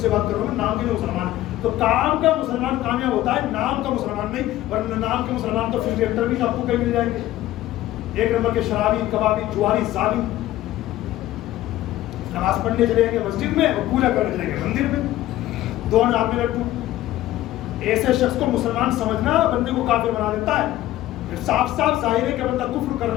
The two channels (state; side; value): quieter; right; 14.8 dB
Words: بات کر رہا ہوں, نام کے مسلمان. تو کام کا مسلمان کامیاب ہوتا ہے, نام کا مسلمان نہیں. ورنہ نام کے مسلمان تو فلم ایکٹر بھی آپ کو کہیں مل جائیں گے, 1 نمبر کے شرابی, کبابی, جواری, ظالم. نماز پڑھنے چلے گے مسجد میں اور پوجا کرنے چلے گے مندر میں, 2 ہاتھ میں لڈو. ایسے شخص کو مسلمان سمجھنا بندے کو کافر بنا دیتا ہے. صاف صاف ظاہر ہے کہ بندہ کفر کر